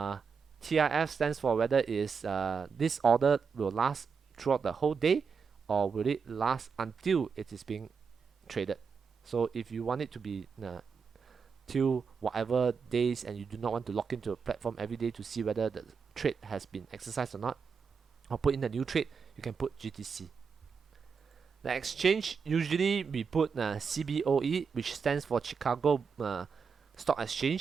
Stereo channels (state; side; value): quieter; left; 5.8 dB